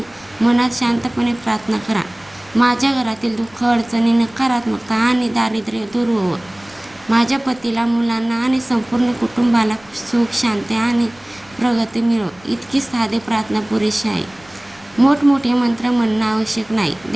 मनात शांतपणे प्रार्थना करा. माझ्या घरातील दुःख, अडचणी, नकारात्मकता आणि दारिद्र्य दूर होवो. माझ्या पतीला, मुलांना आणि संपूर्ण कुटुंबाला सुख, शांती आणि प्रगती मिळो. इतकी साधी प्रार्थना पुरेशी आहे. मोठमोठे मंत्र म्हणणं आवश्यक नाही.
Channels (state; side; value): noise; left; rumble, 27 dB below the sound